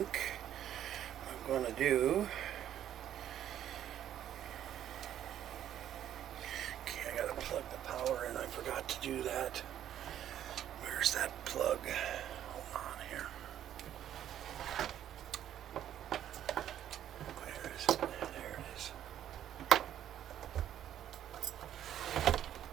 what I'm going to do... Plug the power in. I forgot to do that. Where's that plug? Hold on here. Where is it? There it is.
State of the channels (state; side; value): quieter; left; 10.9 dB